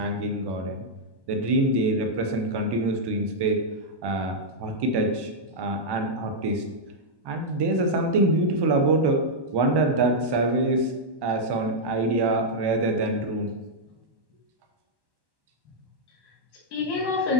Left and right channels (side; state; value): left; late; 1.1 ms